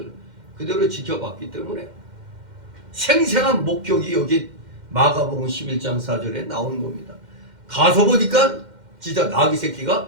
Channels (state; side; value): late; left; 2.1 ms